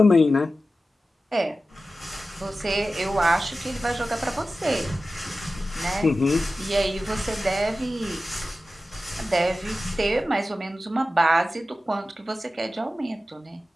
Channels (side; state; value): both; normal; correlation 0.94